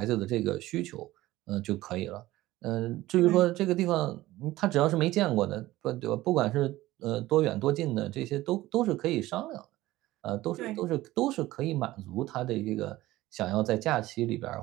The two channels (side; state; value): left; quieter; 17.0 dB